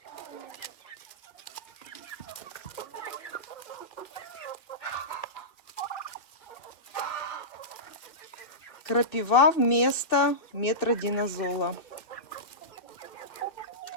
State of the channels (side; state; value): right; late; 2.8 ms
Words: Крапива вместо метродинозола.